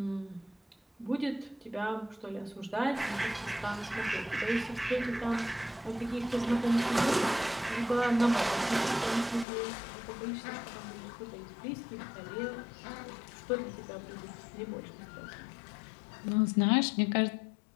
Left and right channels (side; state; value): right; drops out; at 9.5 s